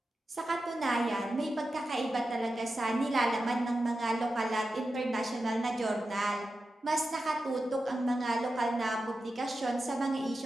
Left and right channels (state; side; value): normal; both; correlation 0.91